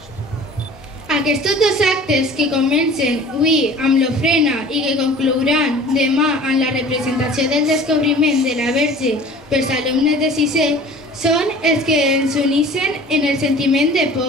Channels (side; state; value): both; normal; correlation 0.45